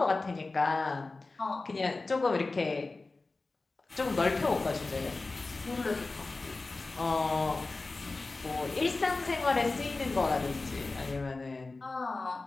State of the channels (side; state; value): right; quieter; 3.5 dB